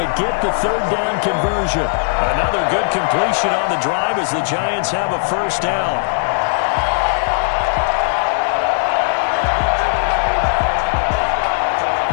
get the 3rd down conversion. Another good completion on the drive as the Giants have a first down.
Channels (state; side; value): silent; right; digital silence